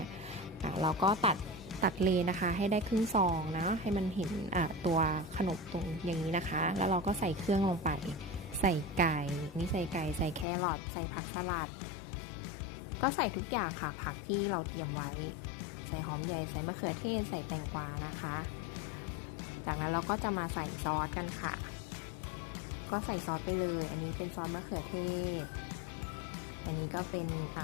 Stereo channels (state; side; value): drops out; right; at 10.5 s